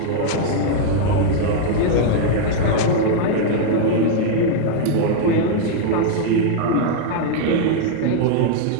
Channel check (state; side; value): different; both; correlation -0.01